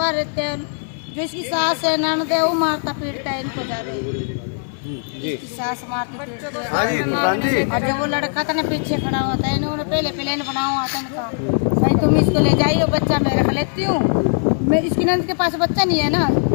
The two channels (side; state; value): right; silent; 66 dB below the other